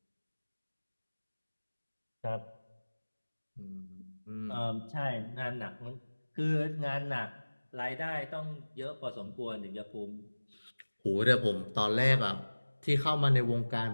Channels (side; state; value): both; inverted; correlation -1.00